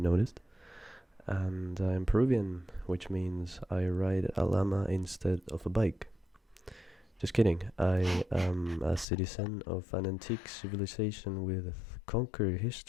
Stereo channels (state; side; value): drops out; right; at 9.1 s